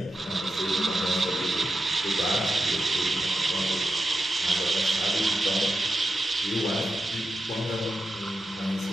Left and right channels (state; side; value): normal; both; correlation 0.89